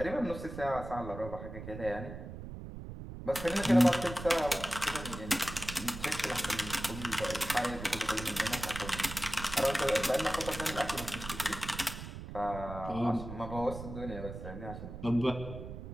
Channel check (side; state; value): right; noise; rumble, 10 dB below the sound